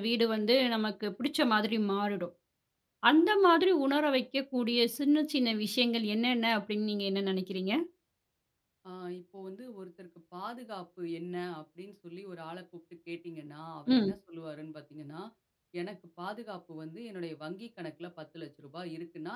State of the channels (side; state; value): both; identical; correlation 1.00